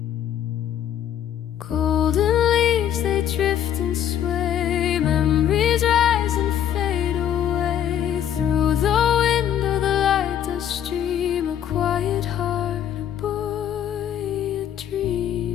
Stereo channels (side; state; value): right; quieter; 10.0 dB